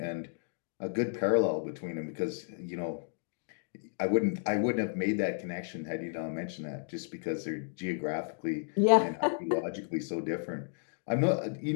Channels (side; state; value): right; silent; digital silence